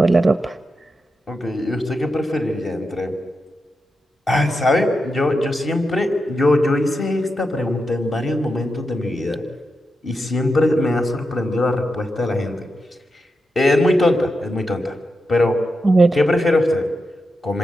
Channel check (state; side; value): normal; both; correlation 0.88